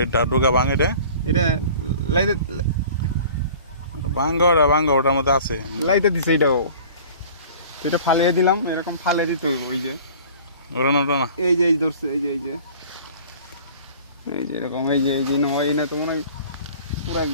এটা ডোকা ভাঙ, এটা লাইতে ভাঙ্গা ওটার মধ্যে আছে। লাইতে দিছে এটাও, এটা ফালিয়ে দিলাম, এরকম ফালে দিতে হইব। ওই যে ওটা না এই যে ধরছে, এই যে এরকম, এই যে নয় না তো মনে হয় পুরা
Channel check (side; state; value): both; inverted; correlation -0.45